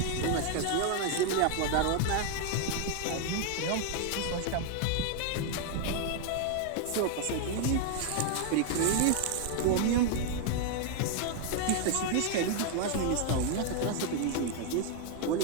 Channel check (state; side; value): different; both; correlation 0.00